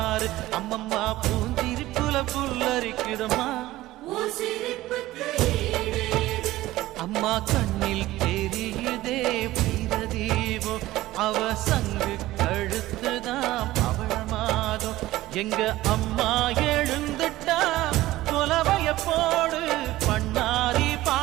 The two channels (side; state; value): left; quieter; 16.7 dB